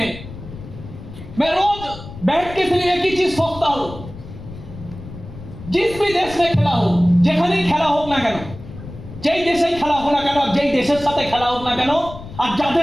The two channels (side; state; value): left; noise; rumble, 14 dB below the sound